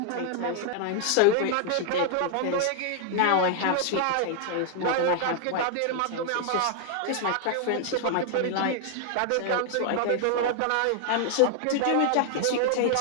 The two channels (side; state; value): both; different; correlation 0.00